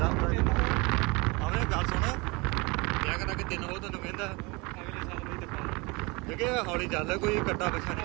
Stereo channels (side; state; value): left; quieter; 26.6 dB